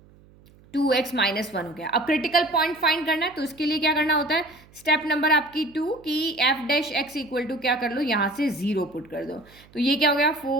2x - 1 हो गया। अब क्रिटिकल पॉइंट फाइंड करना है, तो उसके लिए क्या करना होता है, स्टेप नंबर आपकी 2 की f'(x) इक्वल टू क्या कर लो, यहाँ से 0 पुट कर दो। तो ये क्या हो गया,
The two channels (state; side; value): noise; right; hum, 27 dB below the sound